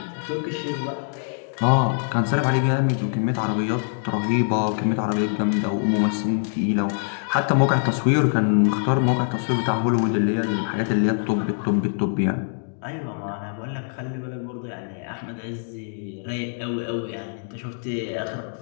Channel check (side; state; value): right; silent; digital silence